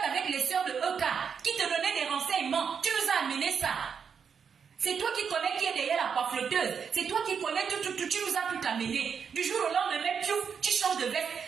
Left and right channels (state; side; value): quieter; left; 6.7 dB